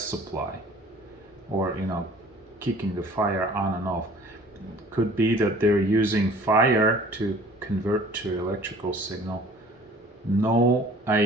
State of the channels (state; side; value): normal; both; correlation 0.50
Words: or kicking the fire on and off. Could be that they're using fire to convert to electrical signal. No